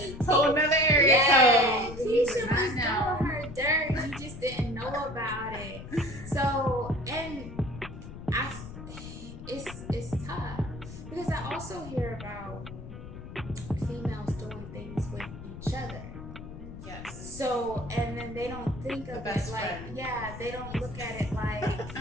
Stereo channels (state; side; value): noise; left; rumble, 11 dB below the sound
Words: you. Whole another area yeah, code. Keisha was doing her dirt. You just didn't know about it. So, and it's tough. Because I also hear about females doing things with each other. Yes. So, and then they don't think of it like, they don't look at it like,